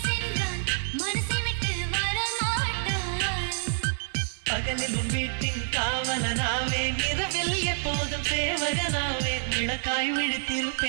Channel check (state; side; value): silent; left; 58 dB below the other